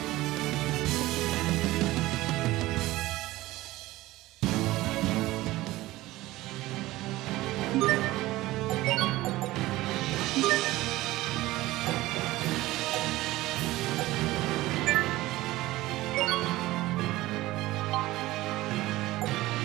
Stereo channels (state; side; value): quieter; left; 17.8 dB